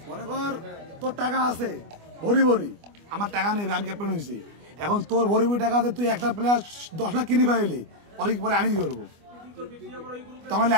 মনে কর তোর টাকা আছে ভরি ভরি, আমার টাকা নেই, আমি ক্যাপ্টেন হয়েছি, এখন তোর ভরি ভরি টাকা আছে, তুই একটা প্লেয়ার 10 লাখ কিনে পাইলি, পরে আমি কি করবো? তোমার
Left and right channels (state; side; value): late; left; 25 ms